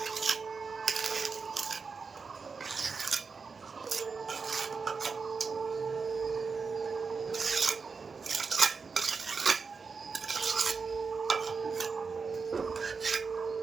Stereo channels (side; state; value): left; quieter; 5.0 dB